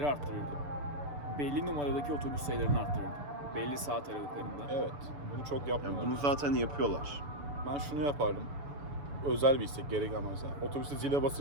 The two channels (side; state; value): left; late; 6.9 ms